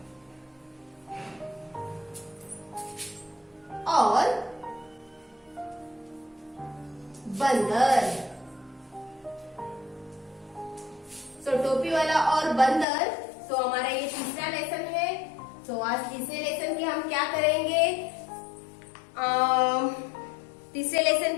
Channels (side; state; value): right; drops out; at 12.9 s